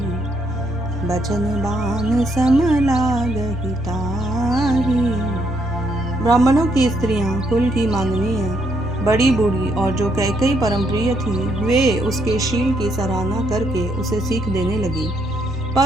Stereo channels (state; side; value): normal; both; correlation 0.74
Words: बचन बान सम लागहि ताही। ब्राह्मणों की स्त्रियां कुल की माननीय, बड़ी बूढ़ी और जो कैकई परम प्रिय थी, वे उसके शील की सराहना करके उसे सीख देने लगी,